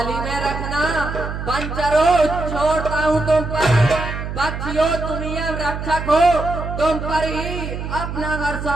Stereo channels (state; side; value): noise; right; hum, 6 dB below the sound